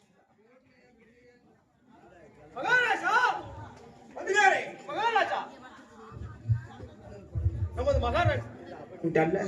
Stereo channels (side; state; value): both; identical; correlation 1.00